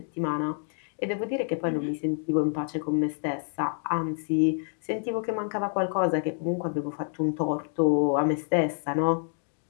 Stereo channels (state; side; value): silent; right; 59 dB below the other